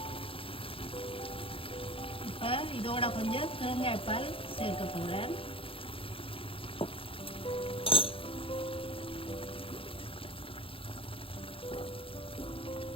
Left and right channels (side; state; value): right; late; 0.27 ms